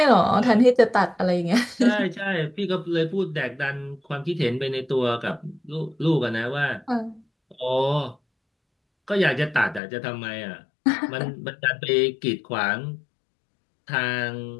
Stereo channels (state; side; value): drops out; right; at 9.8 s